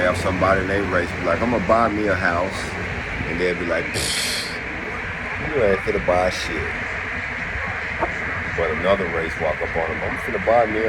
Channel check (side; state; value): both; identical; correlation 1.00